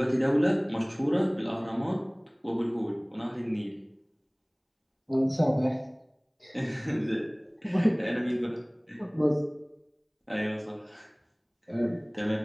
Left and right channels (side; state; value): both; identical; correlation 1.00